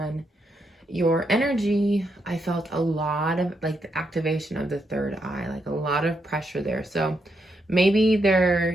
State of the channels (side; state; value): both; normal; correlation 0.80